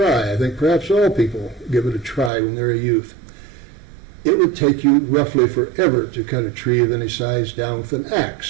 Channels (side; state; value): left; drops out; at 2.3 s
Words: I think perhaps all people give it a try when they're a youth. It would take you roughly forever to cut a tree of any size down with an